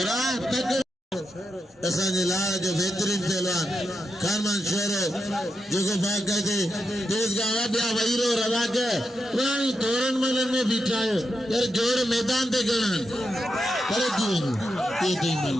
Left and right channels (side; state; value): both; normal; correlation 0.86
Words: तक असांजे लाल जो बेहतरीन पहलवान कारमान शोरो जेको बाक़ायदे तेज़गाह वाडिया वहीरो रवा के पुरानी तोरण मलन में बीठा है यार जोर मैदान ते गणन करे दी ये दी